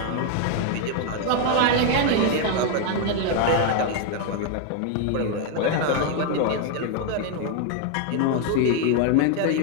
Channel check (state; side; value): different; both; correlation 0.01